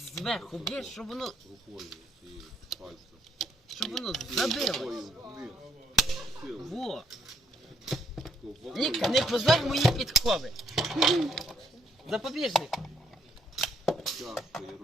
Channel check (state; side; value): normal; both; correlation 0.71